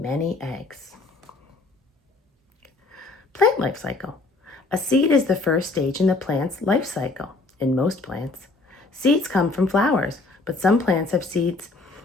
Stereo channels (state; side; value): quieter; right; 3.3 dB